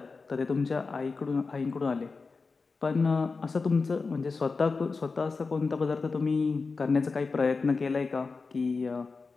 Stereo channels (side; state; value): right; quieter; 4.3 dB